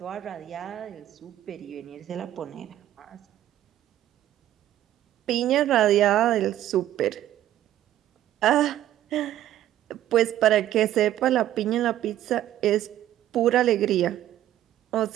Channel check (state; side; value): quieter; left; 12.7 dB